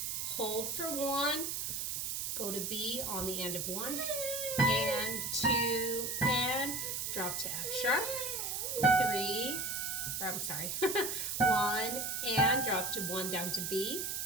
hold for 1. Go to B on the end of 1 and 2 and drop to F sharp. 3, or I'm sorry, 1 and drop to 1 down to B.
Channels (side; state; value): right; noise; hiss, 2 dB below the sound